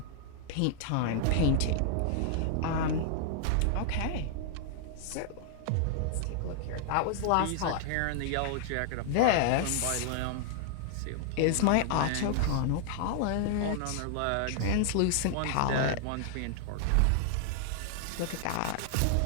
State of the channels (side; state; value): both; different; correlation 0.00